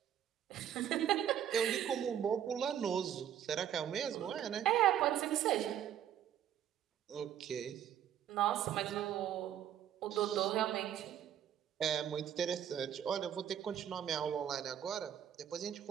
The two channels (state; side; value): quieter; left; 10.1 dB